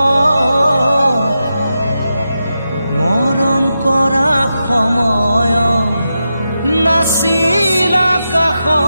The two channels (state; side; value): inverted; both; correlation -0.88